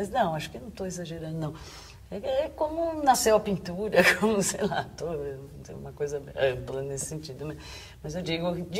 não, acho que não estou exagerando, não. É como nasceu a pintura, como, sei lá, uma coisa ampla nesse sentido. Mas eu digo, de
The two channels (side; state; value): both; identical; correlation 1.00